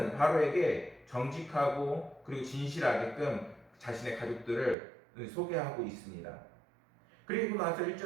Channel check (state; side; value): drops out; left; at 4.8 s